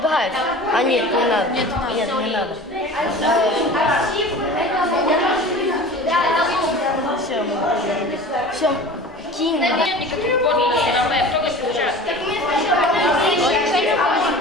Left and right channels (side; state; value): both; normal; correlation 0.38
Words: А, нет, не надо. Нет, не надо. Все, кинь. Нет никаких подписей на веб, только сейчас.